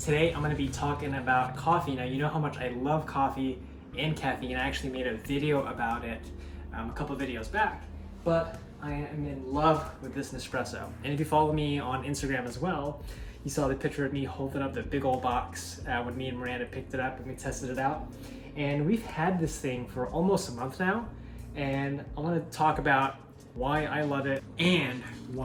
I'm going to be talking about coffee. Now you know how much I love coffee and caffeine. I actually made a video about it a couple videos back, but I am in love with this Nespresso. And if you follow me on Instagram as well, you saw the picture of me holding up the big old box when me and Miranda picked it up and we tested it out. And we've had this thing for almost a month now, and I want to talk about why I love it and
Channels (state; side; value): identical; both; correlation 1.00